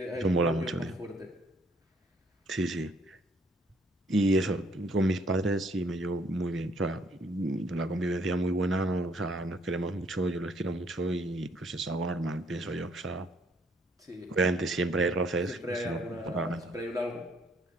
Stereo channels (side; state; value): both; normal; correlation 0.65